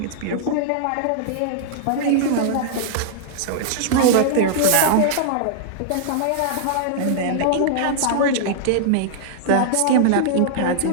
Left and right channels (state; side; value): different; both; correlation -0.01